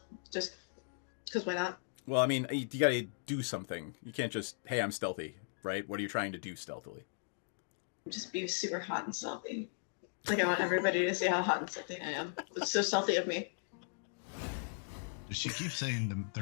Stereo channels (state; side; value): silent; right; digital silence